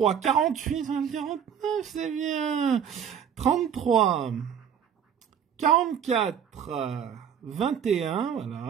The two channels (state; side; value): quieter; left; 8.4 dB